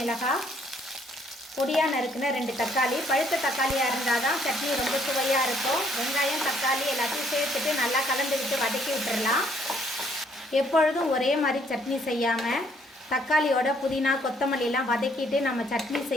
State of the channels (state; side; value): normal; both; correlation 0.66